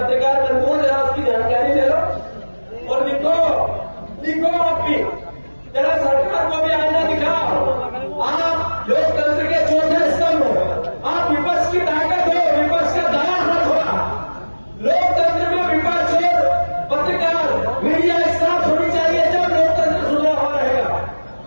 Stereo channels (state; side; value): inverted; both; correlation -1.00